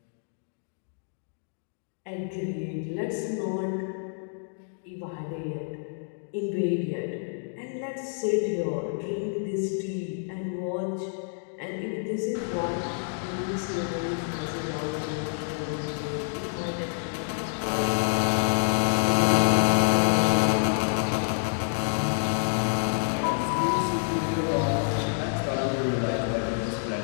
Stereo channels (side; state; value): right; silent; digital silence